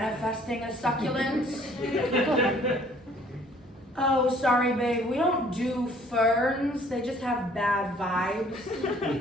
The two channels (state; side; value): normal; both; correlation 0.58